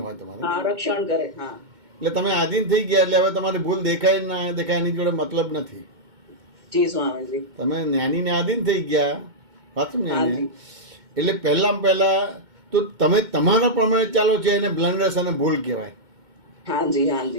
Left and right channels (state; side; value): late; left; 2.2 ms